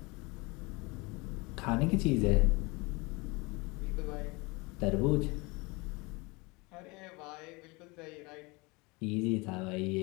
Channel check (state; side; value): quieter; right; 26.1 dB